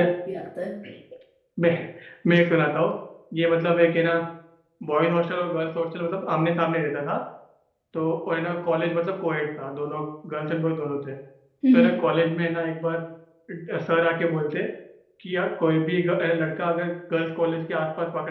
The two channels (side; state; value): both; identical; correlation 1.00